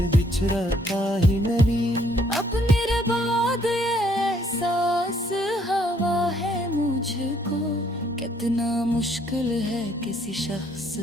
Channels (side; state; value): both; normal; correlation 0.66